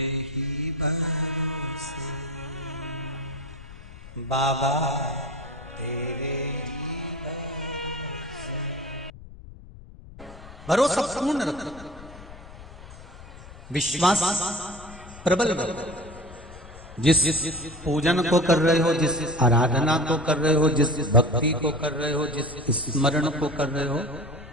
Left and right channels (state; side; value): noise; left; rumble, 17 dB below the sound